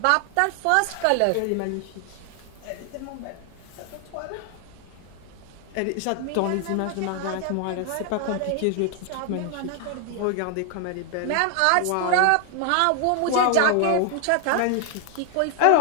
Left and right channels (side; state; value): both; different; correlation 0.00